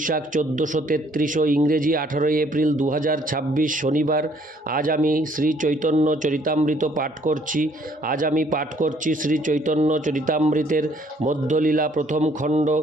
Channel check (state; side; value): normal; both; correlation 0.63